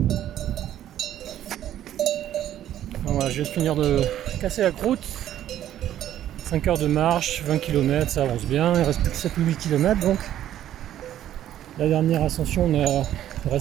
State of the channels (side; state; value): left; quieter; 11.8 dB